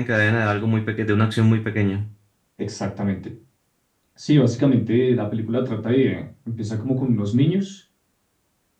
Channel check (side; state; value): both; identical; correlation 1.00